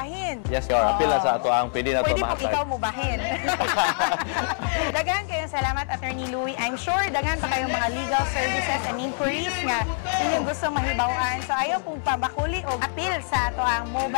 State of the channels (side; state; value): right; silent; digital silence